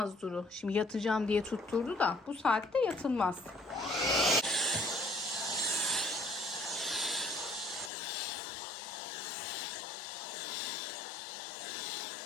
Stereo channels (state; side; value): drops out; right; at 7.9 s